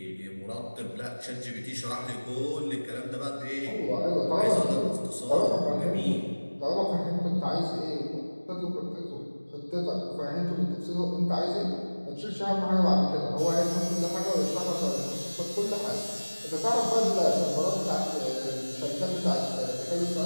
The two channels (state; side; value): inverted; both; correlation -1.00